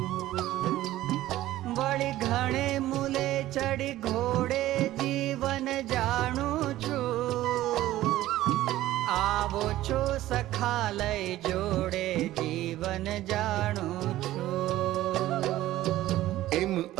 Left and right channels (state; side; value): quieter; left; 15.0 dB